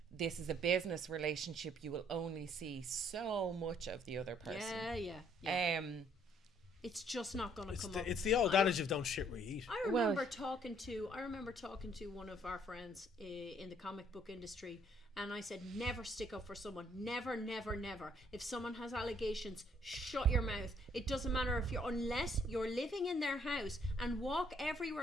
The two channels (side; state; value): both; normal; correlation 0.65